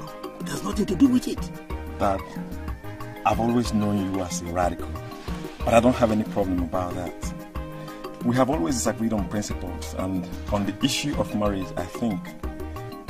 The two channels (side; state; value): both; identical; correlation 1.00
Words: It has nothing to do with it. Dad, I've always known you as a radical, but I don't have any problem about that. We have always disagreed on principles, and on the issue of marriage, I think